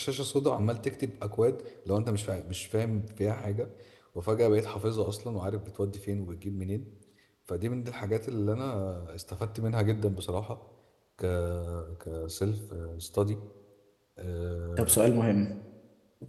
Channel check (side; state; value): both; identical; correlation 1.00